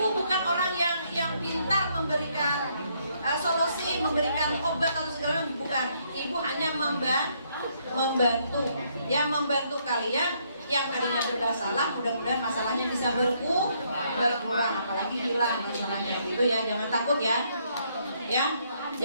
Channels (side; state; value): both; inverted; correlation -0.71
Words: bukan orang yang pintar memberikan solusi, memberikan obat atau segala macam, bukan. Ibu hanya membantu, ya, membantu kalian yang tadinya bermasalah, mudah-mudahan masalahnya bisa berkurang, apalagi hilang masalahnya, gitu ya. Jangan takut ya,